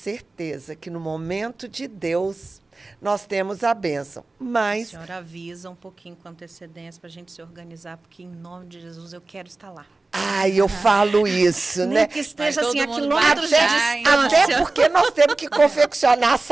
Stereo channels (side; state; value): left; quieter; 3.3 dB